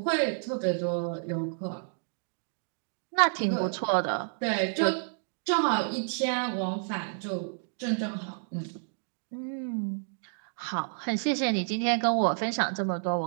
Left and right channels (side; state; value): left; silent; digital silence